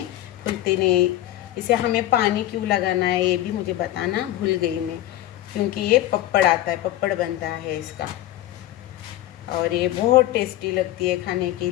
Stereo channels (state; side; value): quieter; right; 14.3 dB